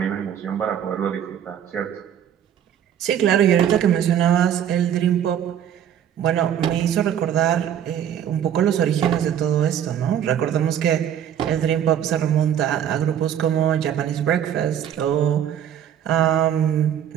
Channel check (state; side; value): quieter; left; 9.6 dB